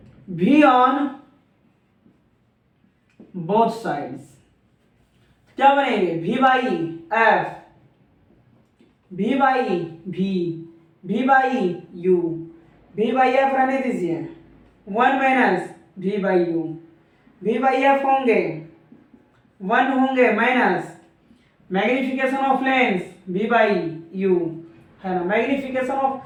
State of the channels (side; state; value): both; identical; correlation 1.00